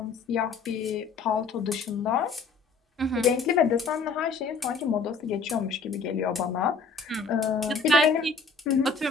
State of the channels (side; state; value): right; quieter; 4.7 dB